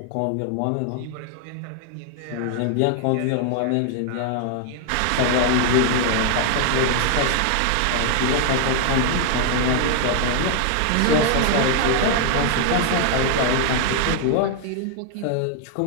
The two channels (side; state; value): both; different; correlation 0.00